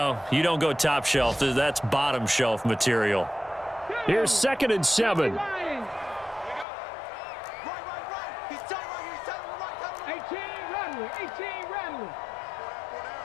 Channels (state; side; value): drops out; right; at 6.7 s